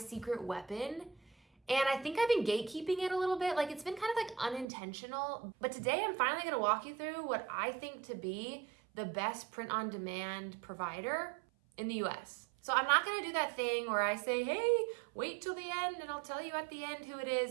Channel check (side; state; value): left; drops out; at 4.7 s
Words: weapon. And I think I've been gatekeeping it a little bit. Like, it's been kind of like unintentional. But today I'm finally gonna walk you through what I think to be the best print-on-demand provider in the US. So I'm not gonna do that thing where I say, hey, wait till the end and I'll tell you at the end who it